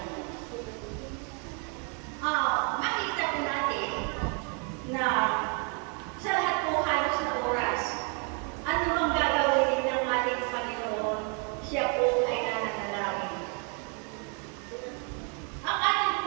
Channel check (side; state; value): left; quieter; 37.3 dB